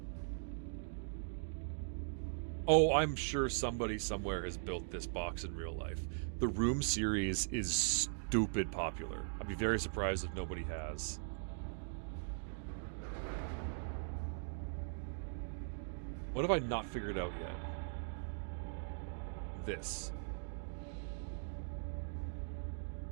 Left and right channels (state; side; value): silent; left; digital silence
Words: Oh, I'm sure somebody somewhere has built this box in real life. The Room series is stupid popular. I'd be very surprised if nobody has. What have I not figured out yet? This.